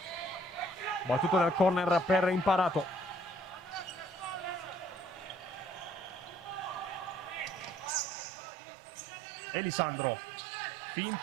Battuto del corner per Imparato. Elisandro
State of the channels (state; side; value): drops out; left; at 7.9 s